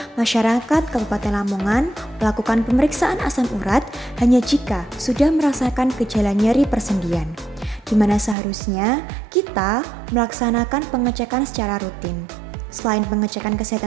masyarakat Kabupaten Lamongan melakukan pemeriksaan asam urat hanya jika sudah merasakan gejala nyeri persendian, di mana seharusnya kita melaksanakan pengecekan secara rutin. Selain pengecekan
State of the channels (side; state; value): left; drops out; at 8.3 s